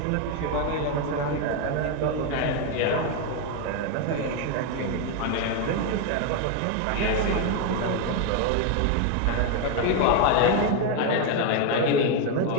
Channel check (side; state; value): both; different; correlation 0.01